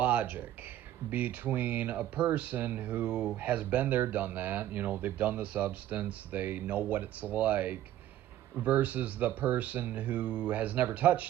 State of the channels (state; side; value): quieter; left; 12.9 dB